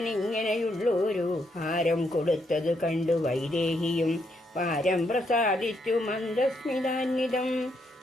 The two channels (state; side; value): normal; both; correlation 0.76